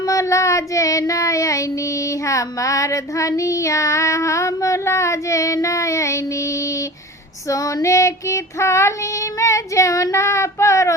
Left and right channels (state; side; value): normal; both; correlation 0.37